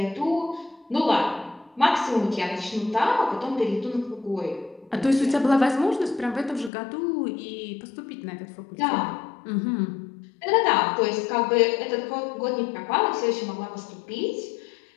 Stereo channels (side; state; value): right; drops out; at 6.7 s